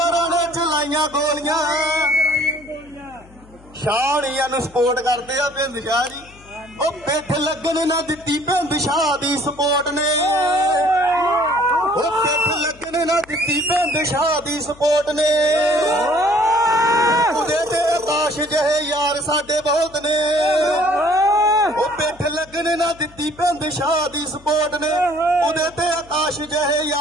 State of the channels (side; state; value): left; noise; hum, 24 dB below the sound